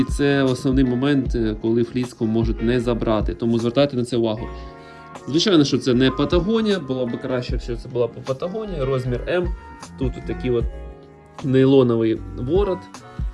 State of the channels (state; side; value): identical; both; correlation 1.00